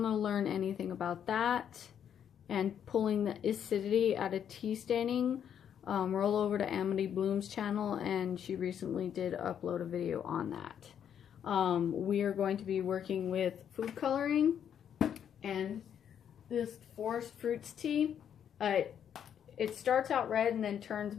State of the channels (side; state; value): right; quieter; 8.9 dB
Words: to learn anything about that and pulling the acidity out of tea staining, roll over to Amity Bloom's channel, and she recently did upload a video on that. We are going to be working with food coloring and this forest fruits tea. It starts out red and then turns